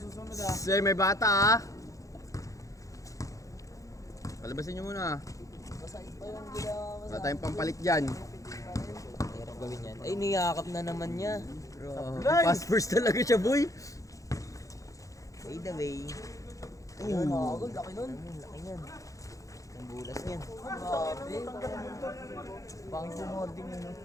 ha. Say, may bata ah. Palabasin nyo muna. Wala tayong pampalit dyan. Hirap gawin yan. Ay, niyakap na naman niya. Fast first talaga siya, boy. By the way. Ayun. Laki nun. Laki niyan. Ang bulas niyan. Pang sumording yun.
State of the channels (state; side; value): late; right; 0.16 ms